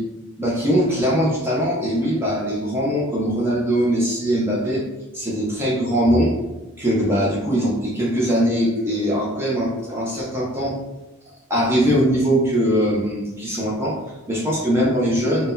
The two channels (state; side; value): normal; both; correlation 0.53